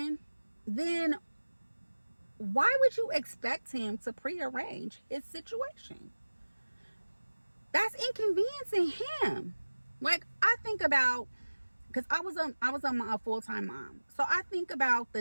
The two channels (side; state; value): both; inverted; correlation -1.00